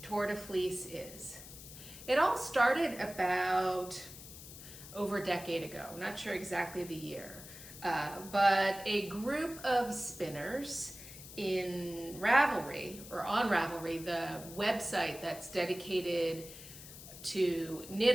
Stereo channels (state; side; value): noise; left; hiss, 15 dB below the sound